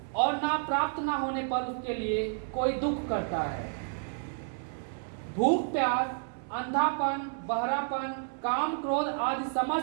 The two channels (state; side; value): silent; left; 57 dB below the other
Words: और ना प्राप्त ना होने पर उसके लिए कोई दुख करता है। भूख प्यास, अंधापन, बहरापन, काम क्रोध आदि